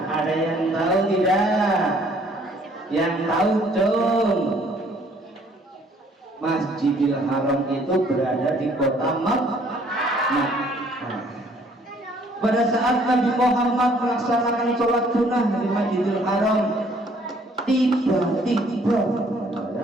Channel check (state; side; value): normal; both; correlation 0.61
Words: Ada yang tahu tidak? Yang tahu dong. Masjidil Haram itu berada di kota Makkah. Pada saat Nabi Muhammad melaksanakan sholat sunnah di Masjidil Haram, tiba-tiba